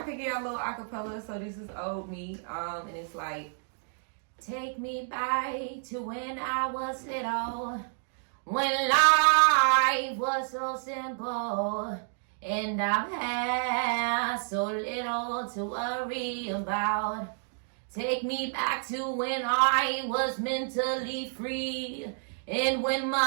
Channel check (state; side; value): silent; left; digital silence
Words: could get a little acapella. So this is Old Me, and it's like, take me back to when I was little, when life was so simple, and I've had so little to worry about. Take me back to when I was mentally free. And when